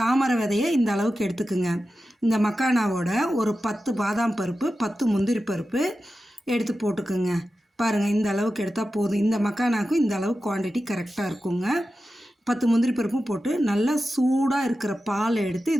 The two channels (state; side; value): normal; both; correlation 0.93